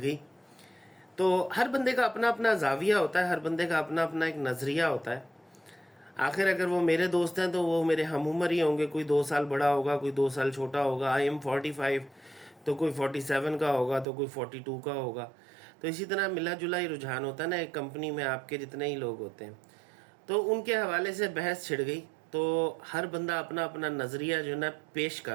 گئی۔ تو ہر بندے کا اپنا اپنا زاویہ ہوتا ہے، ہر بندے کا اپنا اپنا ایک نظریہ ہوتا ہے۔ آخر اگر وہ میرے دوست ہیں تو وہ میرے ہم عمر ہی ہوں گے، کوئی 2 سال بڑا ہوگا، کوئی 2 سال چھوٹا ہوگا۔ آئی ایم 45 تو کوئی 47 کا ہوگا، تو کوئی 42 کا ہوگا۔ تو اسی طرح ملا جلا ہی رجحان ہوتا ہے نا ایک کمپنی میں، آپ کے جتنے ہی لوگ ہوتے ہیں۔ تو ان کے حوالے سے بحث چھڑ گئی، تو ہر بندہ اپنا اپنا نظریہ جو ہے نا پیش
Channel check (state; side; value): drops out; left; at 14.1 s